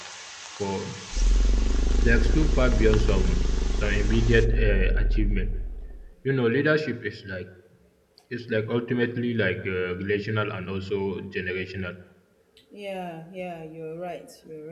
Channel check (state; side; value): identical; both; correlation 1.00